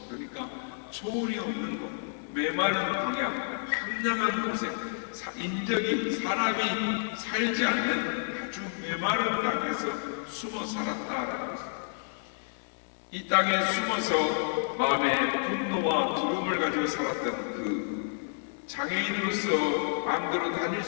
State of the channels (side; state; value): right; silent; 58 dB below the other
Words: 그러니까 초원이 없는 곳, 메마른 광야, 황량한 곳에 인적이 사람이 살지 않는 아주 메마른 땅에서 숨어 살았다라는 것입니다. 이 땅에 숨어서 마음에 분노와 두려움을 가지고 살았던 그 장애인으로서 마음대로 다닐